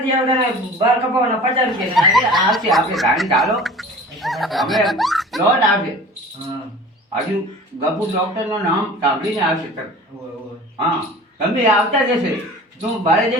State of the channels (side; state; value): both; normal; correlation 0.41